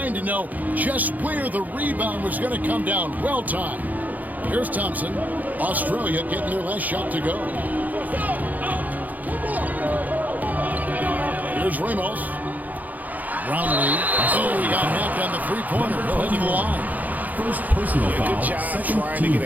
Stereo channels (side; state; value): left; late; 0.080 ms